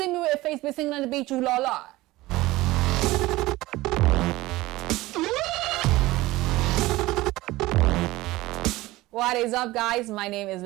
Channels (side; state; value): left; quieter; 18.7 dB